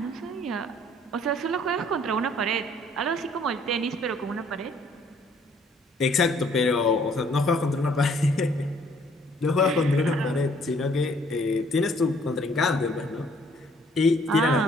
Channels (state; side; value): normal; both; correlation 0.61